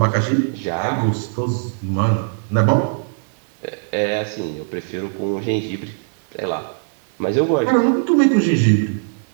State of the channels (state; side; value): silent; left; digital silence